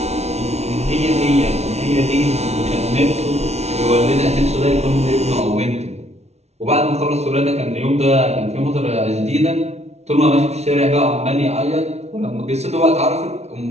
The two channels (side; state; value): left; late; 0.31 ms